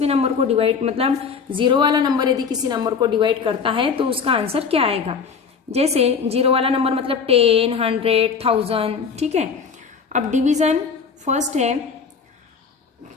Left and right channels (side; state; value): right; quieter; 5.9 dB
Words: नंबर को डिवाइड, मतलब 0 वाला नंबर यदि किसी नंबर को डिवाइड करता है तो उसका आंसर क्या आएगा. जैसे 0 वाला नंबर मतलब 10, 100, 1000. ठीक है. अब डिवीजन फर्स्ट है